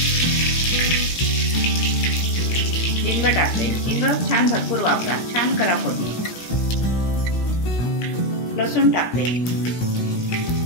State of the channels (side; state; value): right; late; 17 ms